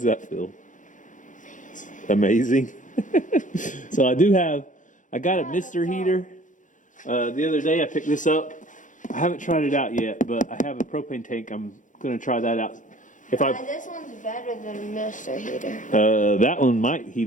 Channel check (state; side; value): late; right; 0.37 ms